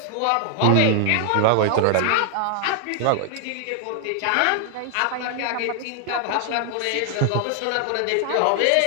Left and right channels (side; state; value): both; different; correlation 0.00